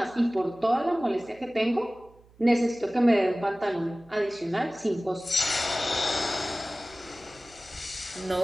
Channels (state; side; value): noise; right; hum, 27 dB below the sound